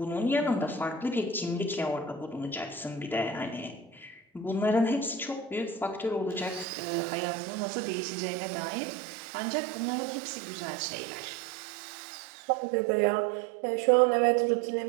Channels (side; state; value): left; drops out; at 6.7 s